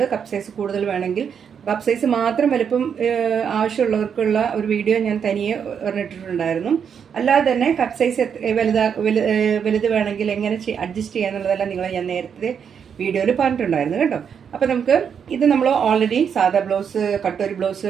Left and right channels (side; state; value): left; quieter; 7.4 dB